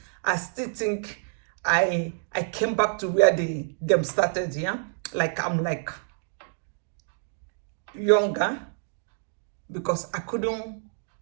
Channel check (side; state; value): left; silent; digital silence